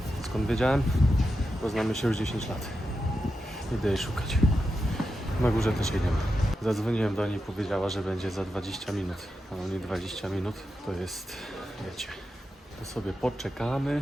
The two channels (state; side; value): normal; both; correlation 0.88